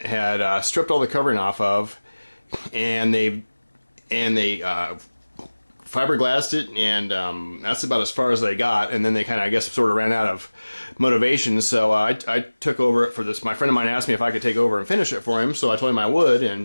stripped all the covering off of, and they fiberglassed it, and that's about as far as they got. And then they kind of, I guess, sort of ran out of motivation. So I took over it for this. My friend of mine asked me if I could take over and finish it for him, so I told him I would,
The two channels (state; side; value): inverted; both; correlation -1.00